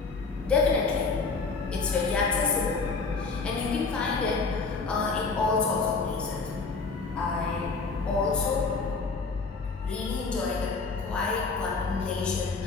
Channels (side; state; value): right; quieter; 4.3 dB